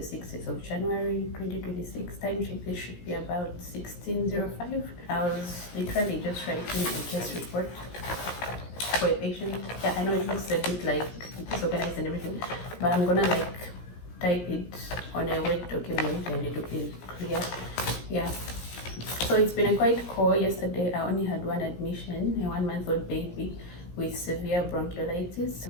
of January 2026. Time check, this should be about 16:05. I was literally just writing a case report for a patient. Yeah, I know it looks a bit like disorganized and everything, but I'm gonna like type it on a Word document and it will be clear. Yeah. So it's been a quite call. Yesterday I only had one admission, a 1-month-old baby with severe bronchiolitis.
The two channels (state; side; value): late; right; 17 ms